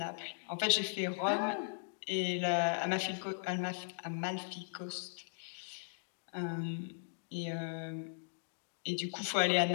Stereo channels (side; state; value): right; silent; digital silence